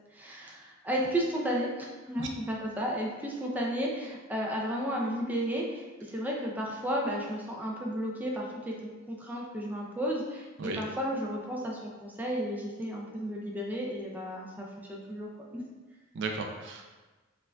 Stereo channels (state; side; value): normal; both; correlation 0.44